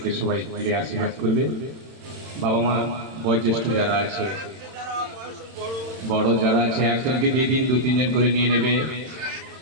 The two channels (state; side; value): late; left; 31 ms